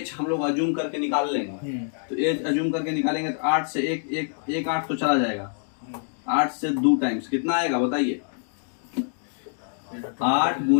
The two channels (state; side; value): silent; right; digital silence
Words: हम लोग अज्यूम करके निकाल लेंगे, तो एच अज्यूम करके निकालेंगे तो 8 से एक 8 तो चला जाएगा, 8 से 2 टाइम्स कितना आएगा बताइए, 8